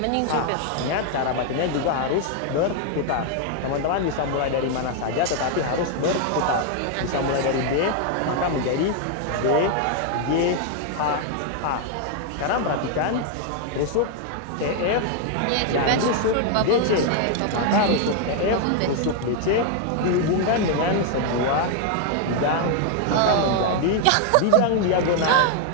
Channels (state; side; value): different; both; correlation 0.00